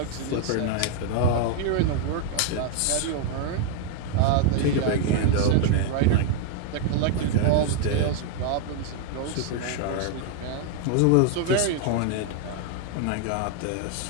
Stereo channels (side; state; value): both; different; correlation 0.00